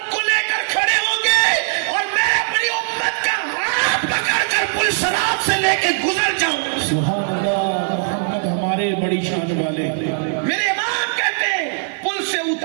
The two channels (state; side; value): silent; left; 61 dB below the other